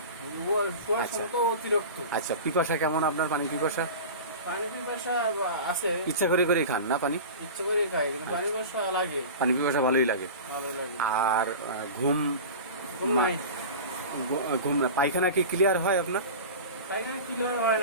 আচ্ছা, পিপাসা কেমন আপনার? পানি পিপাসা আছে? ইচ্ছা করে করে খান না পানি? ইচ্ছা করে খাই, কিন্তু পানি পিপাসা ভালোই লাগে। আর ঘুম নাই। ঘুম না, পায়খানা কি ক্লিয়ার হয় আপনার? পায়খানা ক্লিয়ার হয়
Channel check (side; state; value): both; inverted; correlation -0.32